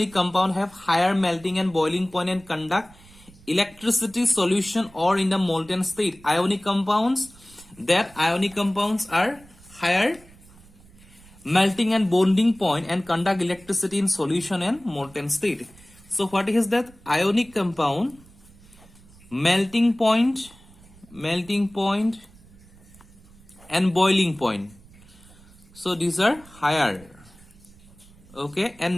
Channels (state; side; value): noise; right; rumble, 24 dB below the sound